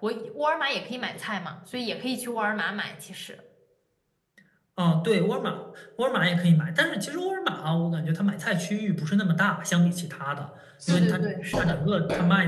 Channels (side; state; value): both; identical; correlation 1.00